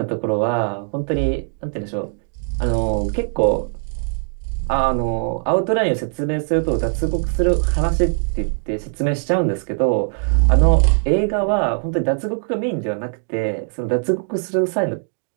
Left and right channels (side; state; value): left; silent; 65 dB below the other